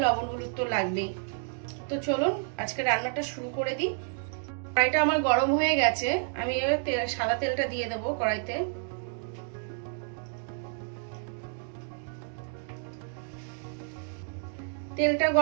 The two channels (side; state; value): left; silent; 58 dB below the other